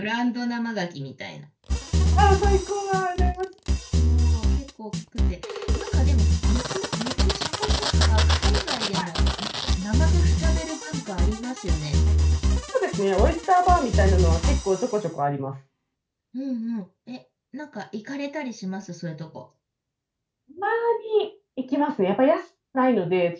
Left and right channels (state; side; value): identical; both; correlation 1.00